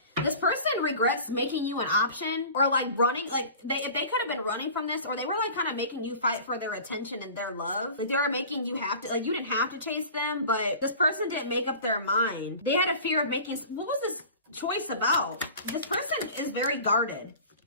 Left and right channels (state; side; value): inverted; both; correlation -0.40